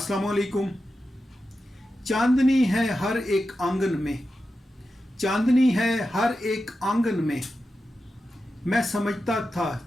वालेकुम। चांदनी है हर एक आंगन में, चांदनी है हर एक आंगन में, मैं समझता था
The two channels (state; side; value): normal; both; correlation 0.91